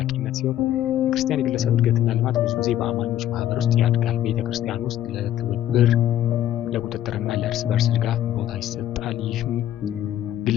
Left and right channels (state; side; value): quieter; right; 12.0 dB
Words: ሲሆን የክርስቲያን የግለሰብ እድገትና ልማት ብዙ ጊዜ በአማኞች ማህበር ውስጥ ያድጋል። ቤተክርስቲያን ውስጥ ለትብብር፣ ለቁጥጥርና ለእርስ በርስ ድጋፍ ቦታ ይሰጣል። ይህም